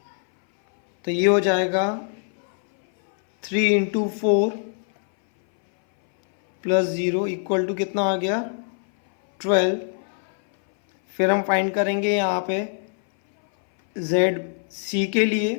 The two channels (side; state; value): right; silent; 60 dB below the other